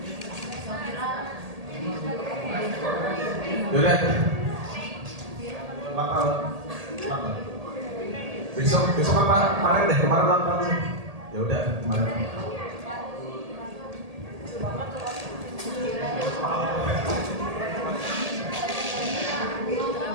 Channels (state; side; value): late; left; 1.8 ms